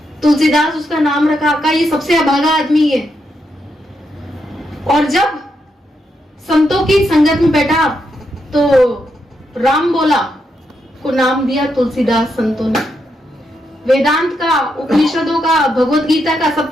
तुलसीदास उसका नाम रखा, कहा ये सबसे अभागा आदमी है। और जब संतों की संगत में बैठा तो राम बोला को नाम दिया तुलसीदास। संतों ने वेदांत का, उपनिषदों का, भगवत गीता का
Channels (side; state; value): both; normal; correlation 0.82